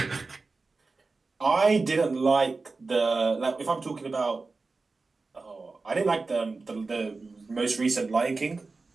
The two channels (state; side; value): quieter; left; 3.9 dB